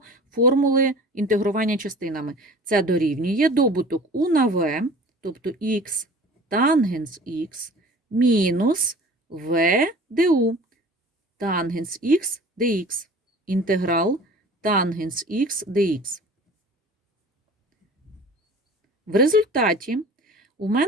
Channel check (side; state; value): both; normal; correlation 0.43